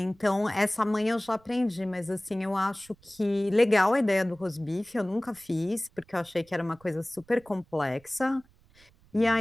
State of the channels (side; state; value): right; noise; rumble, 30 dB below the sound